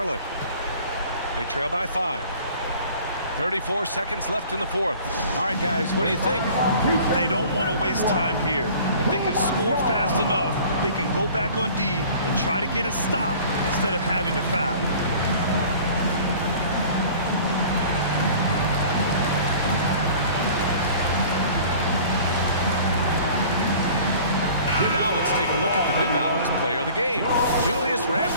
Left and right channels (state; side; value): inverted; both; correlation -0.47